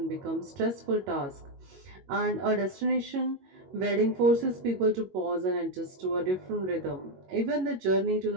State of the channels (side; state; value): left; late; 22 ms